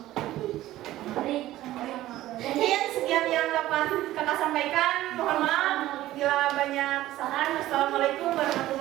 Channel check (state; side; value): quieter; left; 15.1 dB